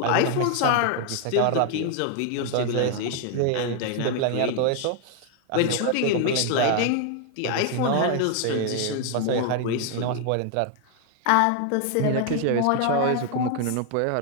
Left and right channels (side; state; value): both; different; correlation 0.00